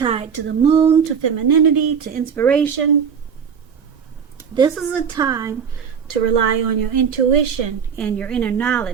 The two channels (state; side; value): quieter; left; 7.0 dB